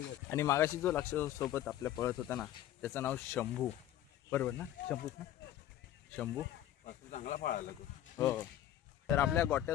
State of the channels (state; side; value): quieter; right; 12.3 dB